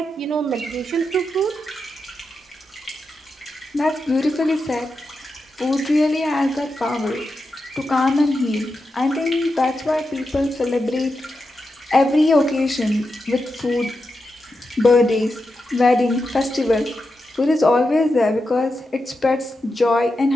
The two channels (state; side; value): normal; both; correlation 0.88